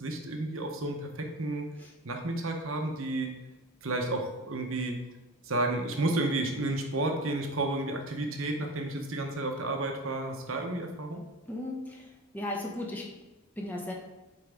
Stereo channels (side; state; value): both; normal; correlation 0.33